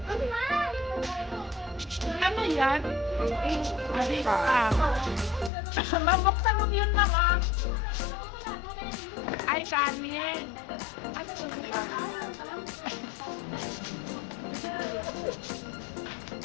Ano yan? Mabuksan mo yun naman. Ay, kanin. Ano yun?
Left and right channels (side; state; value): right; drops out; at 5.5 s